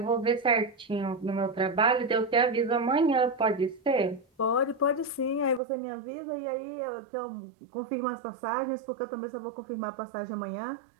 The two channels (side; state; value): left; drops out; at 5.6 s